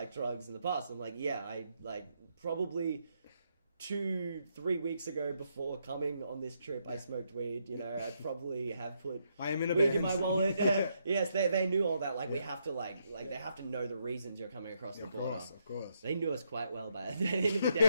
drugs in the past? I'm like, yeah, I like probably 2-3 weeks ago before coming on this trip, I smoked weed. You know, I probably have put I am in a weed band. in my wallet. Yes, they knew all that. Like we have to like they have to know the reasons you're coming across the border. Of course. They knew us quite well by the end of the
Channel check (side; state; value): both; inverted; correlation -0.77